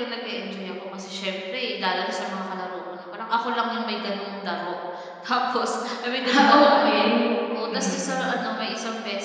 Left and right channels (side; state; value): both; identical; correlation 1.00